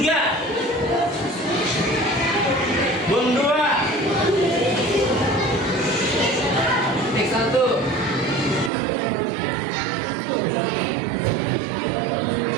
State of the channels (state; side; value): drops out; left; at 8.7 s